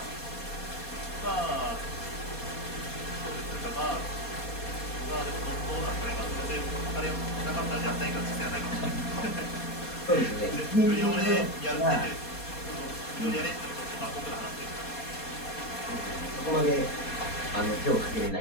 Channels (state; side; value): late; right; 4.2 ms